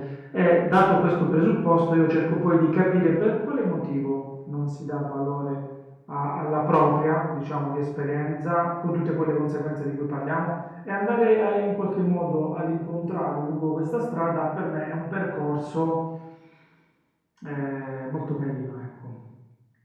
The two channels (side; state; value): both; identical; correlation 1.00